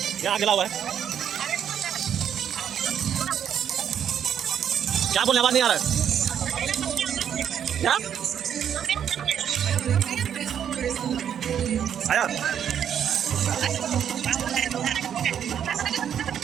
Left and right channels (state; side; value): quieter; left; 8.9 dB